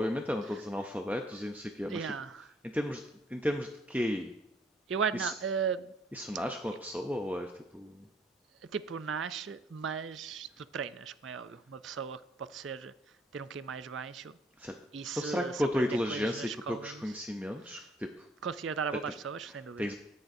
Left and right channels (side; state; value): both; normal; correlation 0.63